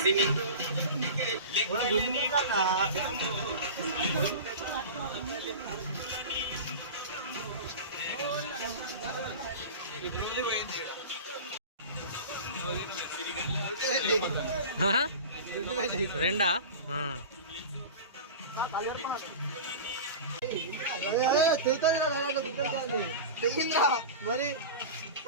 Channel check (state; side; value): inverted; both; correlation -0.31